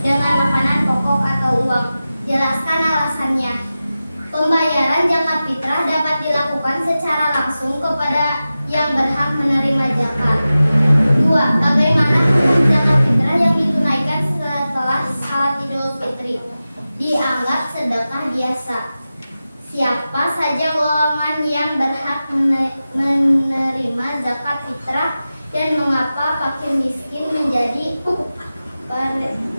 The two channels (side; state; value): both; inverted; correlation -0.94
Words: makanan pokok atau uang? Jelaskan alasannya. Pembayaran zakat fitrah dapat dilakukan secara langsung kepada yang berhak menerima zakat. 2. Bagaimana hukum zakat fitrah yang ditunaikan setelah salat Idul Fitri? Dianggap sedekah biasa. Siapa saja golongan yang berhak menerima zakat fitrah dan mengapa fakir miskin menjadi